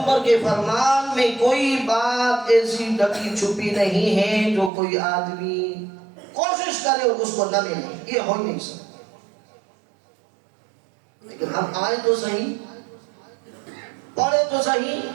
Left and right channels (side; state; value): left; drops out; at 4.7 s